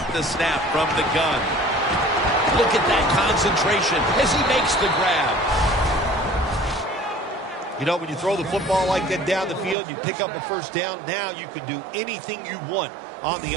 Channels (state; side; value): drops out; left; at 9.8 s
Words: the snap from the gun. Look at that concentration as he makes the grab. You know, when you throw the football like that down the field, you pick up a first down. Now you can do anything you want on the